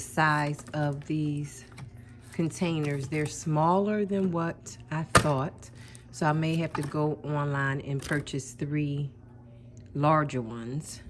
of these containers. They're smaller than what I thought. So I may have to go online and purchase 3 larger ones.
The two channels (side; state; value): both; identical; correlation 1.00